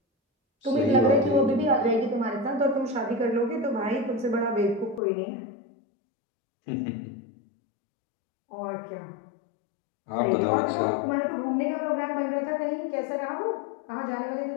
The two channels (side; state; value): right; drops out; at 5.0 s